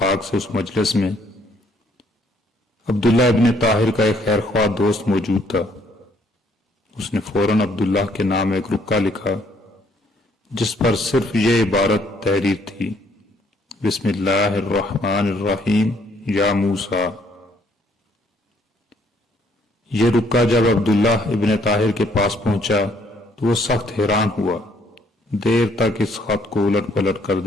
سے اس مجلس میں عبداللہ ابن طاہر کا ایک خیر خواہ دوست موجود تھا۔ اس نے فوراً عبداللہ کے نام ایک رکا لکھا جس پر صرف یہ عبارت تحریر تھی: بسم اللہ الرحمن الرحیم یا موسیٰ۔ یہ رکا جب عبداللہ ابن طاہر کے پاس پہنچا تو وہ سخت حیران ہوا، دیر تک اس خط کو الٹ پلٹ کر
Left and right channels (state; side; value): normal; both; correlation 0.66